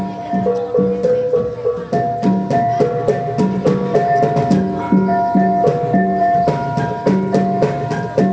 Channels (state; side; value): identical; both; correlation 1.00